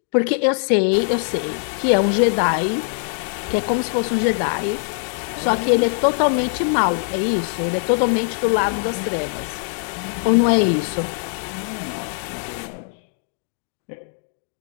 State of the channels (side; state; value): right; silent; digital silence